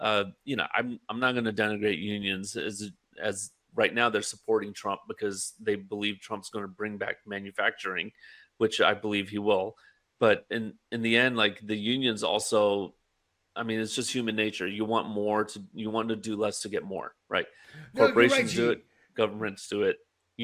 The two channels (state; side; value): identical; both; correlation 1.00